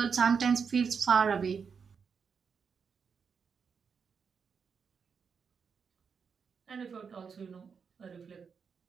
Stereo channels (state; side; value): quieter; left; 6.1 dB